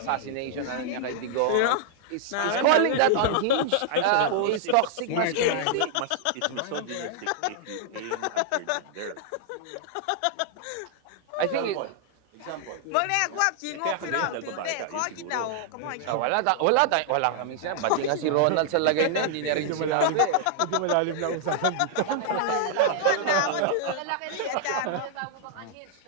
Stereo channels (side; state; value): both; different; correlation -0.01